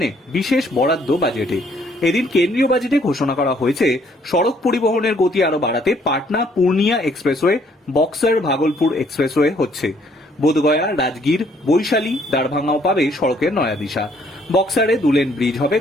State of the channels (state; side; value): normal; both; correlation 0.65